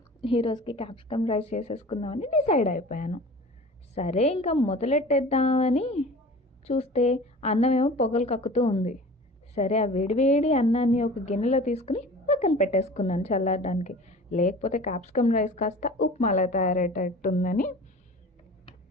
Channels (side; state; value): both; normal; correlation 0.40